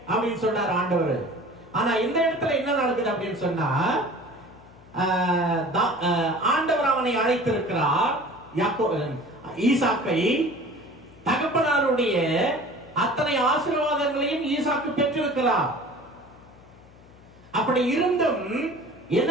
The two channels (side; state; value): left; noise; hum, 24 dB below the sound